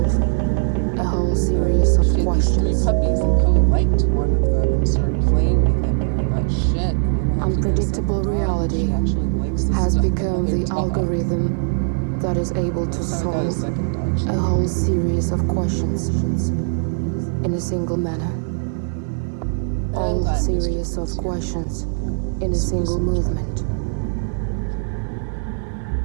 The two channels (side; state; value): left; silent; 65 dB below the other